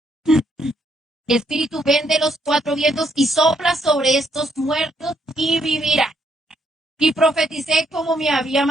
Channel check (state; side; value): normal; both; correlation 0.73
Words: Espíritu, ven de los cuatro vientos y sopla sobre estos muertos y vivirá. Y profeticé como me había